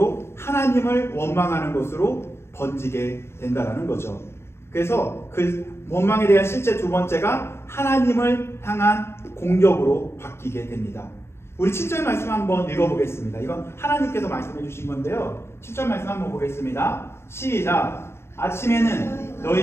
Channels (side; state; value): right; late; 0.12 ms